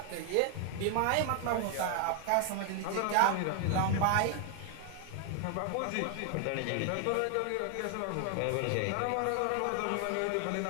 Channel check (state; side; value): different; both; correlation 0.00